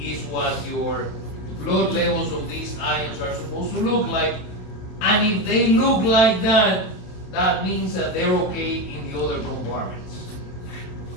what your blood levels of these ions are supposed to look like. And if they look like that, that means that they're okay in the other compartments.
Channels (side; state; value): right; late; 27 ms